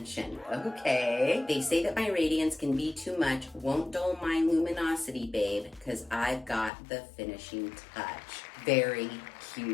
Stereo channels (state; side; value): drops out; right; at 6.7 s